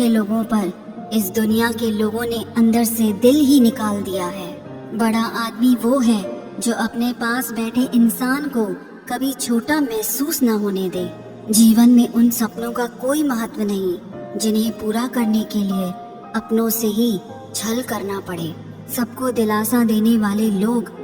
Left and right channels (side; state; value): both; identical; correlation 1.00